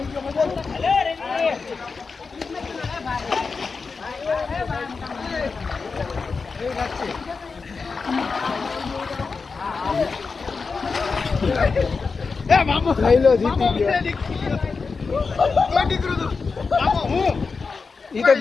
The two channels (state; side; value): quieter; right; 4.7 dB